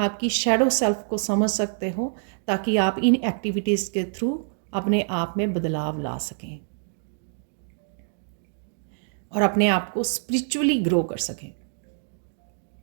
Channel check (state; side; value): silent; left; digital silence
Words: की शेडो सेल्फ को समझ सकते हो, ताकि आप इन एक्टिविटीज़ के थ्रू अपने आप में बदलाव ला सकें और अपने आप को स्पिरिचुअली ग्रो कर सकें।